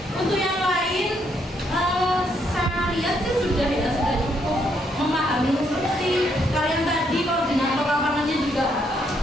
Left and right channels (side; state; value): both; normal; correlation 0.73